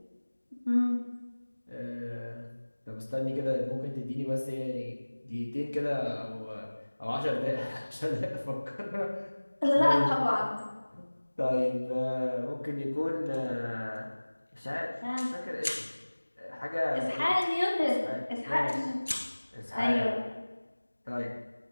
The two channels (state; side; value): inverted; both; correlation -1.00